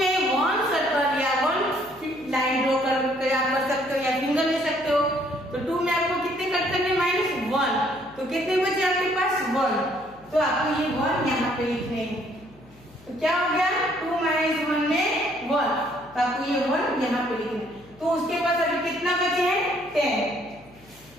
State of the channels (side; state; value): left; noise; hum, 26 dB below the sound